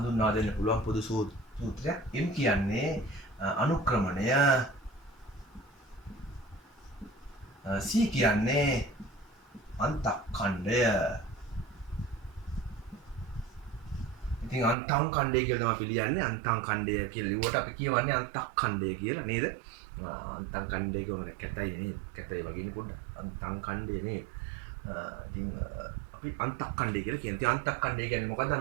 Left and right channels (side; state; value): left; drops out; at 14.8 s